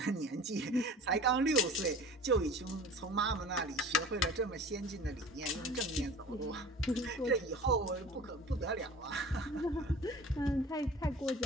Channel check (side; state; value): both; normal; correlation 0.41